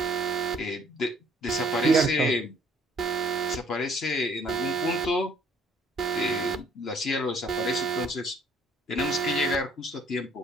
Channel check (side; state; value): both; normal; correlation 0.61